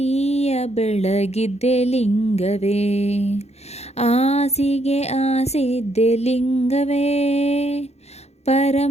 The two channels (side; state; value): right; late; 0.31 ms